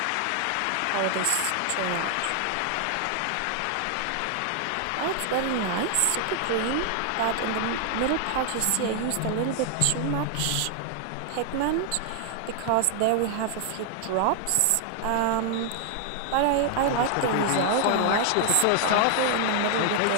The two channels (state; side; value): different; both; correlation 0.00